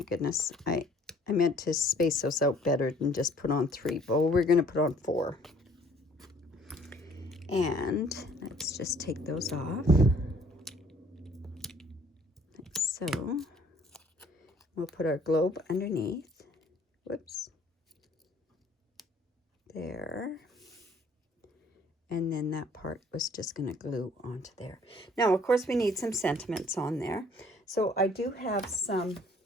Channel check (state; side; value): normal; both; correlation 0.58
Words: goodness, I meant to space those out better than just put on 3, but we're going to put on 4. And let's just take those off. Like so. We'll put our globe underneath. Whoops. There. And then that part was just going to glue onto there. Now, of course, we need some sentiments on there. So I do have some